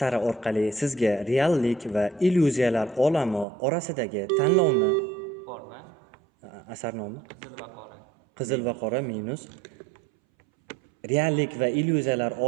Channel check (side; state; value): left; drops out; at 3.5 s